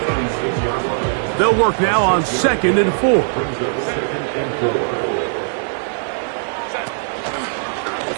They'll work now on 2nd and 4.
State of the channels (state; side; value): silent; left; digital silence